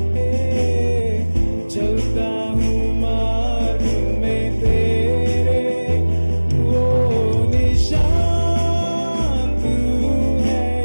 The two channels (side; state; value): both; inverted; correlation -1.00